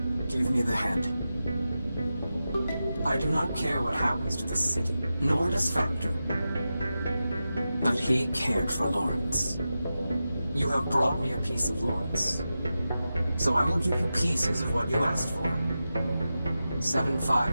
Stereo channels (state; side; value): inverted; both; correlation -0.92